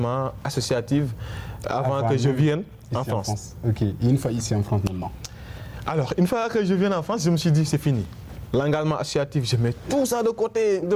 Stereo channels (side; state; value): both; identical; correlation 1.00